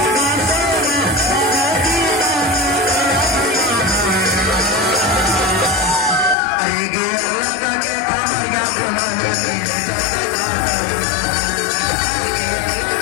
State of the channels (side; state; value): right; drops out; at 6.4 s